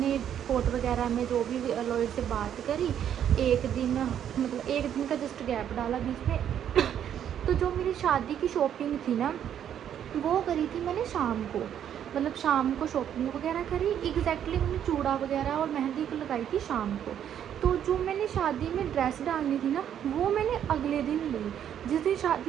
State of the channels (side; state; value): left; quieter; 9.7 dB